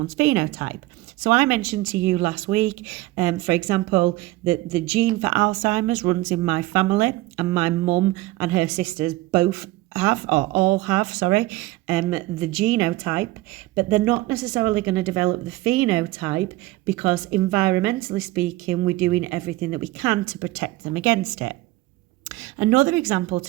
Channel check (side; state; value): left; quieter; 18.5 dB